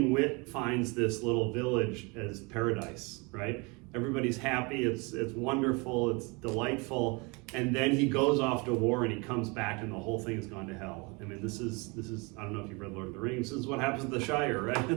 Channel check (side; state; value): left; quieter; 28.7 dB